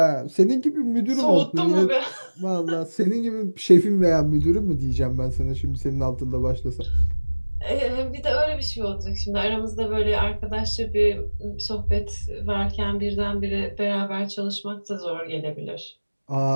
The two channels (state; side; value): inverted; both; correlation -1.00